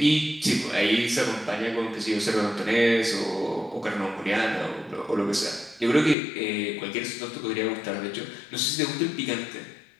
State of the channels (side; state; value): right; drops out; at 6.2 s